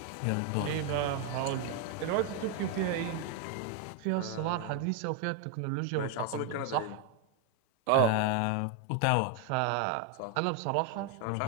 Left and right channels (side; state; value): both; different; correlation 0.01